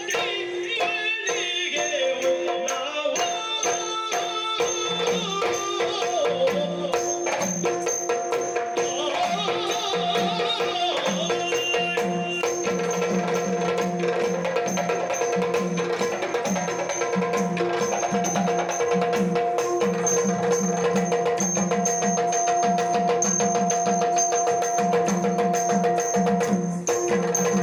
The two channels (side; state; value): both; identical; correlation 1.00